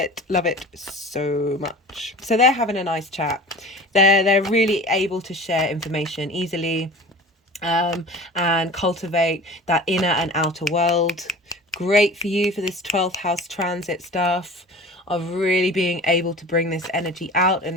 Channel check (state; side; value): normal; both; correlation 0.39